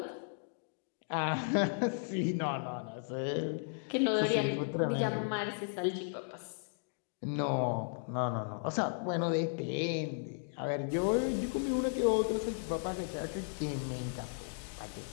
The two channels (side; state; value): right; silent; digital silence